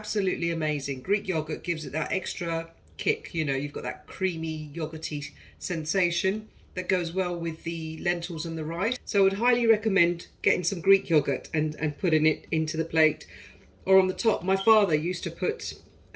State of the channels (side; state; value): both; identical; correlation 1.00